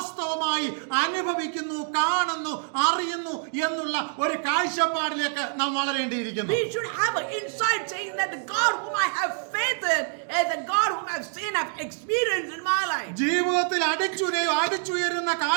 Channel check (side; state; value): left; silent; 60 dB below the other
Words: അനുഭവിക്കുന്നു, കാണുന്നു, അറിയുന്നു എന്നുള്ള ഒരു കാഴ്ചപ്പാടിലേക്ക് നാം വളരേണ്ടിയിരിക്കുന്നു. we should have an insight saying that the God whom I have faith in is the God whom I've seen, I've experienced in my life. life. ജീവിതത്തിൽ അടിച്ചുയരുന്ന